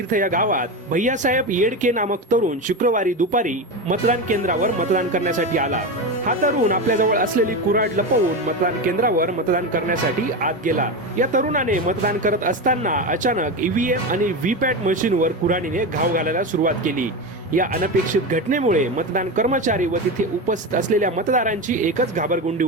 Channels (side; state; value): both; normal; correlation 0.19